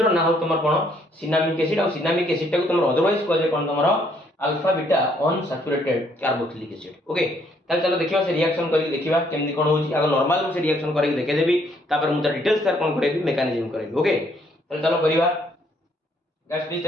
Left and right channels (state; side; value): normal; both; correlation 0.68